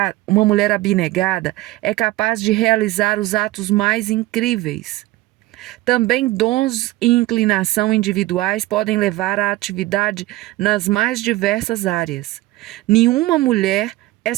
é capaz de realizar os atos mais incríveis. Também dons e inclinação individuais podem levar à atividade nas mais diversas áreas. Nenhuma mulher é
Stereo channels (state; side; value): quieter; left; 17.8 dB